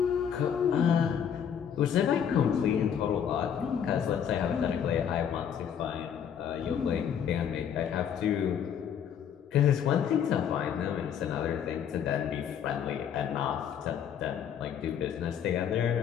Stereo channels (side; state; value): right; quieter; 8.4 dB